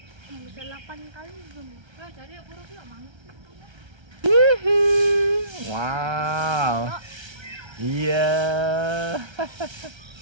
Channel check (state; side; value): late; left; 1.3 ms